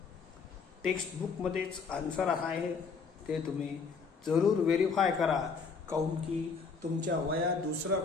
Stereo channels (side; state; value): right; quieter; 5.2 dB